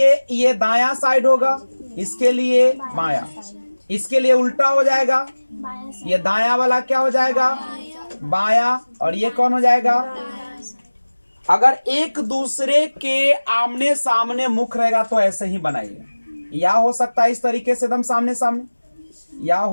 ये दायां साइड होगा, इसके लिए बायां, इसके लिए उल्टा हो जाएगा। ये दायां वाला क्या हो जाएगा? बायां, और ये कौन हो जाएगा? अगर एक दूसरे के आमने सामने मुख रहेगा तो ऐसे ही बनाइए। या हो सकता है इस तरीके से एकदम सामने सामने, या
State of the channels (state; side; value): inverted; both; correlation -1.00